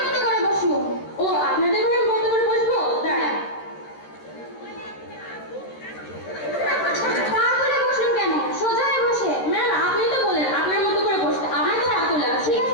মতো করে বসুন। ও আপনাদের ঘরের মতো করে বসবো? দাঁড়ান। পা তুলে বসলেন কেন? সোজা হয়ে বসে। ম্যাম আপনি তো বলেন আপনার মতো করে বসতে, আমার তো পা তোলা আছে।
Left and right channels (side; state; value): right; late; 13 ms